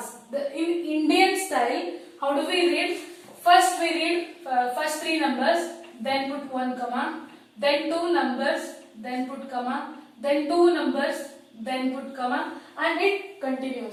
In Indian style, how do we read? First we read first 3 numbers, then put 1 comma, then 2 numbers, then put comma, then 2 numbers, then put comma, and it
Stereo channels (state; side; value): identical; both; correlation 1.00